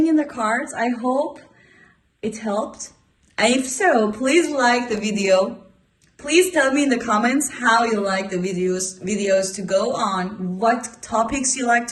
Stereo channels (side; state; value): both; identical; correlation 1.00